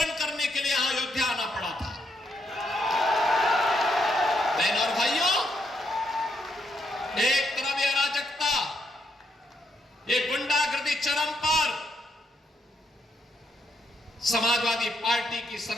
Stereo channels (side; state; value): both; normal; correlation 0.76